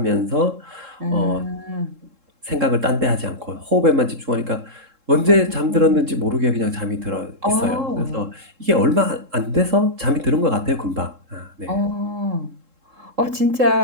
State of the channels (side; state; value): left; late; 3.7 ms